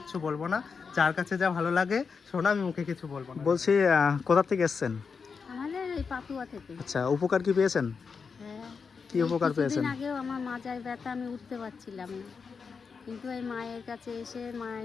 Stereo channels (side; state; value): right; quieter; 5.5 dB